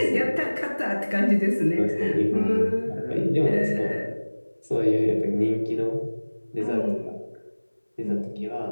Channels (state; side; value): inverted; both; correlation -1.00